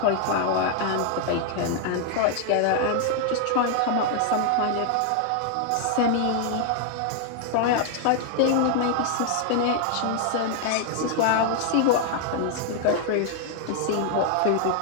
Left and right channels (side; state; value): both; different; correlation 0.00